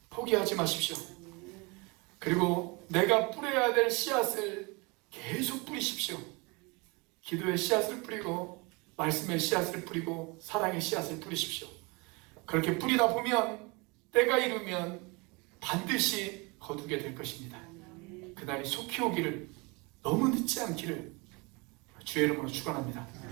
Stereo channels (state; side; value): quieter; left; 27.9 dB